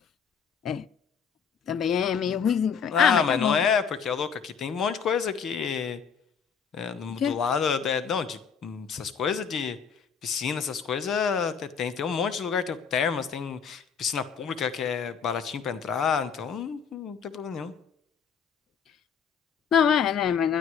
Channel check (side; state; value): right; quieter; 6.8 dB